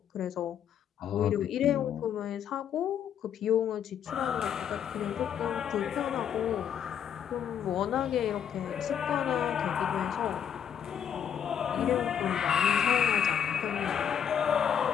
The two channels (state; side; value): quieter; right; 8.6 dB